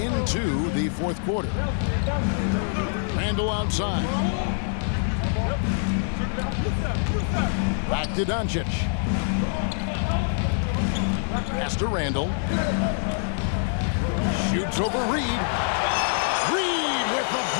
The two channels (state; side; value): silent; right; digital silence